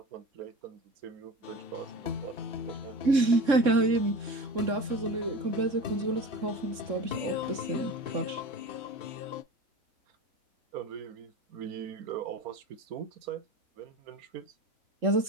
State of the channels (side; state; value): left; late; 3.7 ms